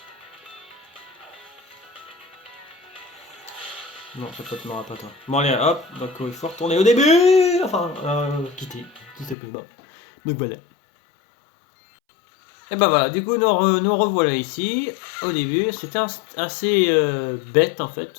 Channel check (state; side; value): drops out; right; at 9.3 s